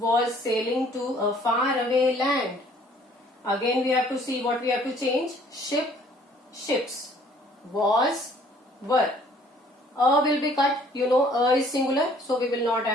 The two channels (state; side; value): normal; both; correlation 0.58